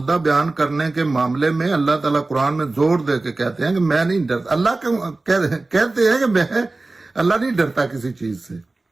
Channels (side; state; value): left; quieter; 3.2 dB